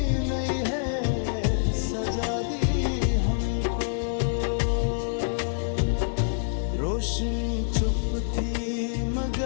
सजा दी हमको। रोशनी चुप थी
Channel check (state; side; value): silent; right; digital silence